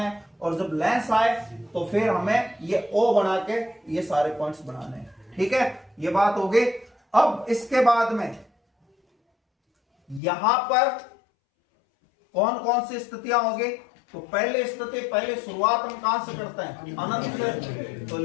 और जब लेंस आए तो फिर हमें ये ओ बना के ये सारे पॉइंट्स बनाने हैं, ठीक है। ये बात हो गई। अब इसके बाद में यहां पर कौन कौन सी स्थितियां होगी, तो पहली स्थिति, पहले शुरुआत हम कहां से करते हैं, अनंत से। तो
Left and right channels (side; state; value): right; drops out; at 10.2 s